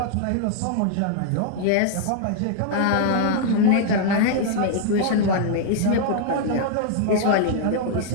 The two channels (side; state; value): both; different; correlation -0.01